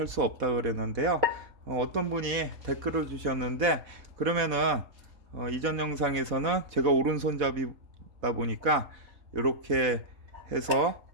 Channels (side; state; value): left; late; 4.1 ms